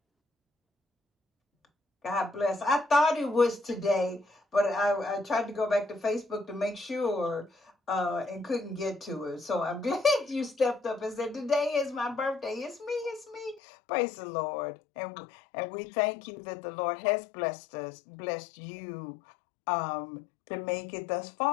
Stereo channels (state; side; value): drops out; right; at 13.6 s